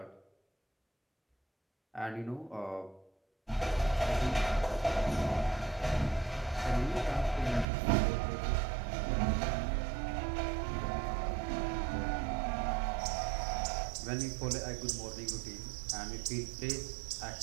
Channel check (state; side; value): drops out; left; at 7.7 s